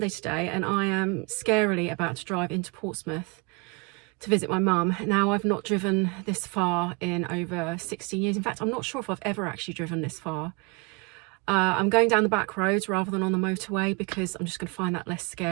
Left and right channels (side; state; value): left; quieter; 29.5 dB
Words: today, and I am scarily about to drive into Portsmouth to visit my mum. Now, I've not driven this far in over 16 years. In fact, I'm not sure if I've ever actually driven this far. I'm going down the back roads rather than on the motorway because I'm just going to find that less